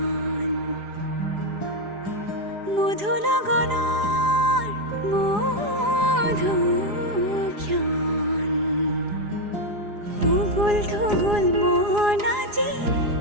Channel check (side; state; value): left; late; 4.8 ms